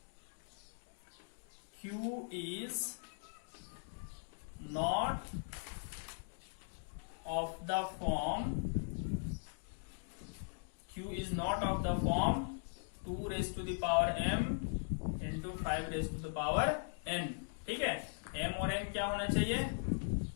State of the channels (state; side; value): silent; right; digital silence